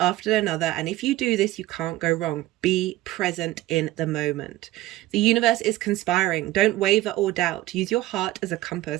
another, and if you do this, you can't go wrong. Be present in the moment. The universe is conspiring. Don't waver or doubt. Use your heart as a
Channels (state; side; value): quieter; left; 16.7 dB